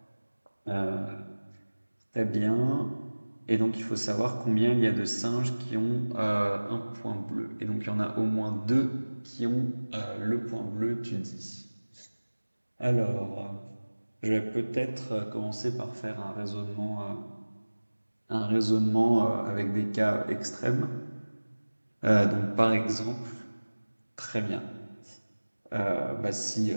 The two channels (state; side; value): inverted; both; correlation -1.00